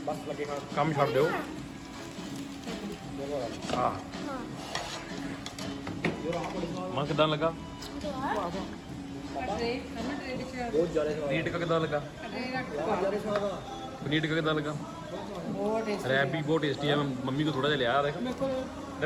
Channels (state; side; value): identical; both; correlation 1.00